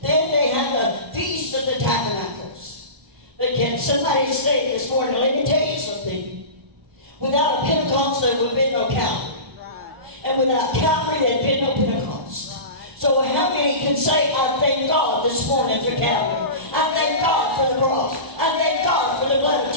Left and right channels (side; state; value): left; late; 1.0 ms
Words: Then they had the Feast of the Tabernacles. But can somebody say this morning, let me tell you something. Without a Pentecost, there would have been no Calvary. And without Calvary, there would have been no Pentecost. So how many can say, I thank God this morning for Calvary. I thank God for the cross. I thank God for the blood of